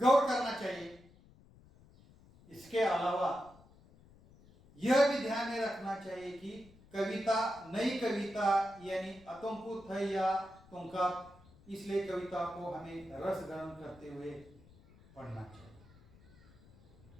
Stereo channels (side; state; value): left; noise; rumble, 25 dB below the sound